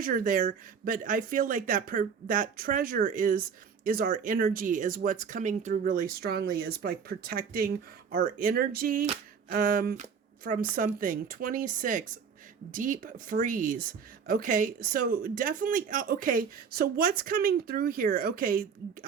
there. But I feel like that treasure is our energy, is what's coming through really strongly, is like protecting our energy from something. 26, deep freeze. Okay, so definitely, okay, so what's coming through here? Okay,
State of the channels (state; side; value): quieter; left; 6.6 dB